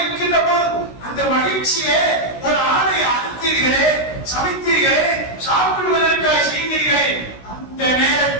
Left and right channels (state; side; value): late; right; 16 ms